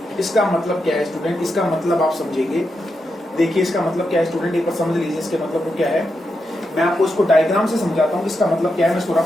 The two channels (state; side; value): normal; both; correlation 0.85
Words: इसका मतलब क्या है स्टूडेंट, इसका मतलब आप समझेंगे। देखिए इसका मतलब क्या है स्टूडेंट, एक बार समझ लीजिए इसके मतलब को क्या है। मैं आपको इसको डायग्राम से समझाता हूँ इसका मतलब क्या है। मैं इसको